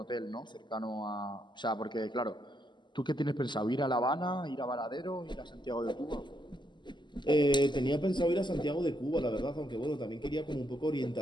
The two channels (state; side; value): late; right; 0.22 ms